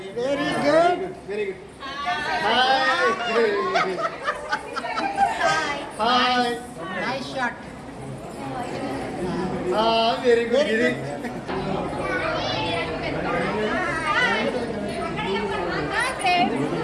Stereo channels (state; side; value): identical; both; correlation 1.00